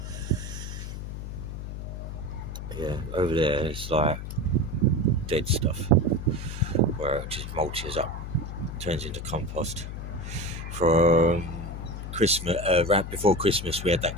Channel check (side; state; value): left; noise; hum, 7 dB below the sound